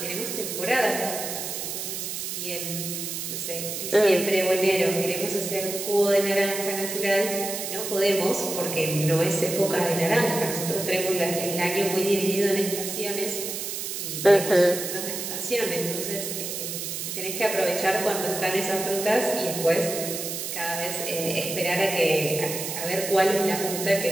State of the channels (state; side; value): noise; right; hiss, 5 dB below the sound